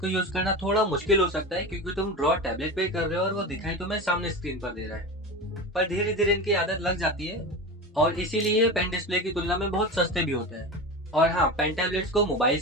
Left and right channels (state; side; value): normal; both; correlation 0.26